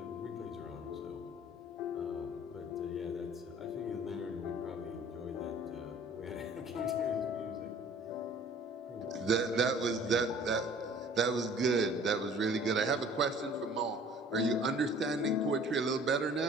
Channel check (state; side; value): normal; both; correlation 0.50